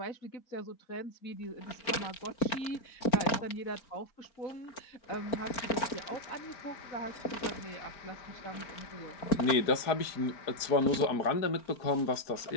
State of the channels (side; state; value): right; late; 4.4 ms